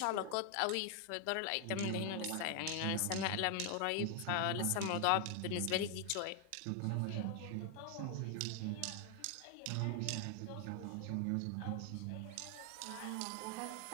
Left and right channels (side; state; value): both; different; correlation 0.00